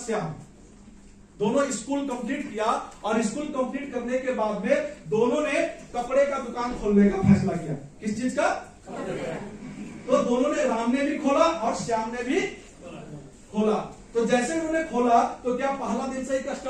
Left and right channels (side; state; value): both; identical; correlation 1.00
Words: श्याम। दोनों स्कूल कंप्लीट किया और स्कूल कंप्लीट करने के बाद में दोनों ने कपड़े का दुकान खोलने का फैसला किया। किस चीज का? तो दोनों ने, राम ने भी खोला और श्याम ने भी खोला। तो जैसे उन्होंने खोला तो क्या पहला दिन से ही